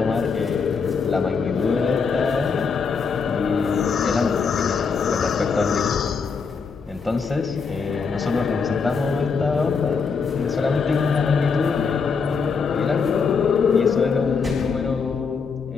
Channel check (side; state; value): right; quieter; 5.4 dB